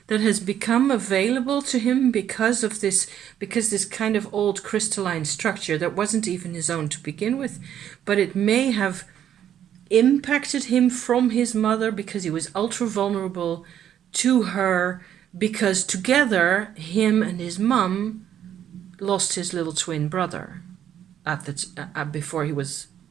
that has become available to him because this kind of old crystalline structure that wasn't even his own to begin with, but it may have impacted him from his mother because he was ultra vulnerable to her, because together him and his mum lost his little twin brother at the before he was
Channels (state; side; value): quieter; left; 10.1 dB